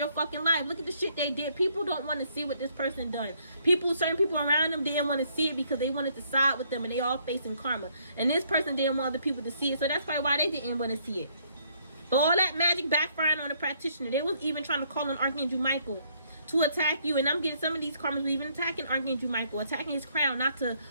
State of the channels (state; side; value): inverted; both; correlation -0.68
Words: fucking life. Look at the shit they did. People don't want to see what this person done. Certain people around them didn't want to see it because they wanted to side with them, and they all facing karma. And this person didn't want other people to see it. So that's probably why they didn't want to see it. But all that magic backfiring on the practitioner. They was even trying to call on Archangel Michael to attack you. And I'm getting some of these karmas were even attacking Archangel Michael, attacking his crown, not to